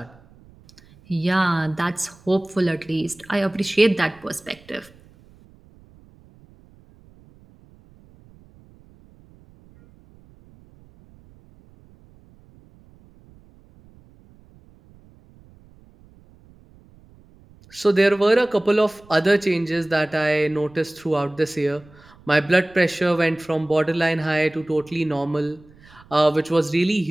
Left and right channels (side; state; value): right; noise; rumble, 27 dB below the sound